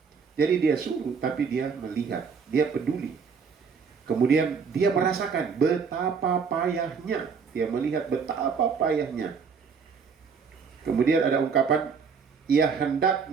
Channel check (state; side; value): quieter; left; 5.8 dB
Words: Jadi dia suruh, tapi dia melihat. Dia peduli. Kemudian dia merasakan betapa payahnya. Dia melihat betapa payahnya. Kemudian ada ungkapan, ia hendak